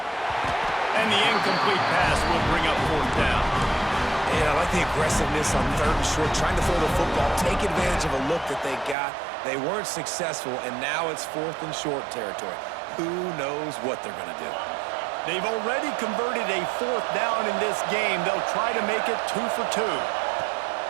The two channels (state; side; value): drops out; left; at 9.0 s